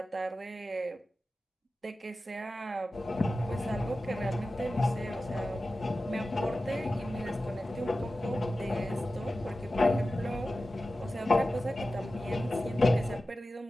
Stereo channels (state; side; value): normal; both; correlation 0.94